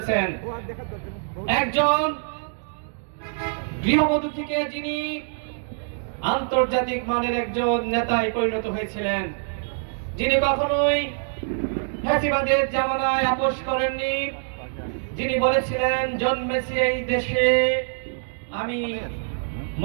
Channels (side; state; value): left; silent; digital silence